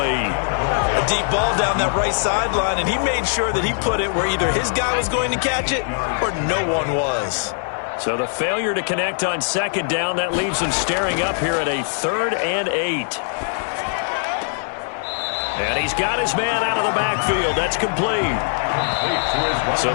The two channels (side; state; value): right; silent; digital silence